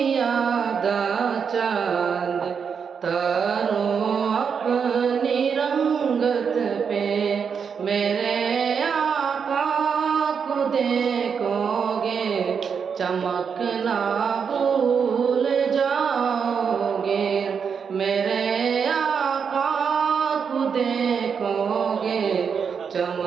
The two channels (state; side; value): quieter; left; 6.5 dB